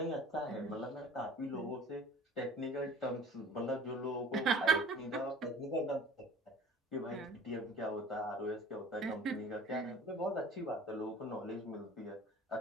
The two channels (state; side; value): normal; both; correlation 0.47